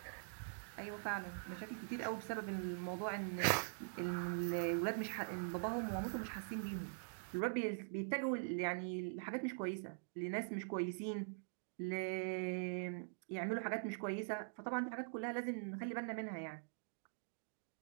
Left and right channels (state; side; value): silent; left; digital silence